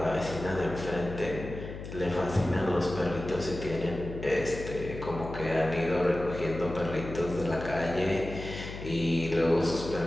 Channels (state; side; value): noise; left; hum, 10 dB below the sound